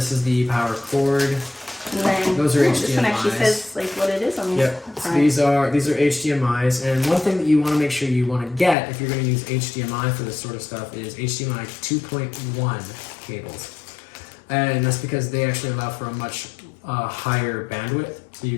is the power cord. And then those are HDMIs. This one actually says like what it is on the Yep. So these are HDMIs, and one thing that you want to make sure you want to get if you're going to use HDMI for this sort of stuff is HDMI 2.1 cables, and that's because they actually allow for a much higher bandwidth, so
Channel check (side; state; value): right; drops out; at 8.8 s